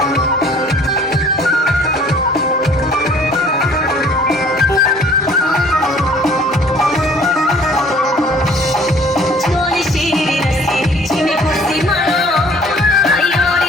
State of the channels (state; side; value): normal; both; correlation 0.54